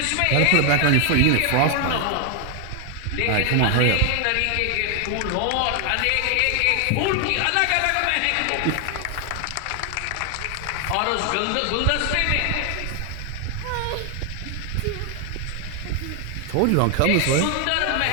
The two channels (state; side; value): different; both; correlation 0.00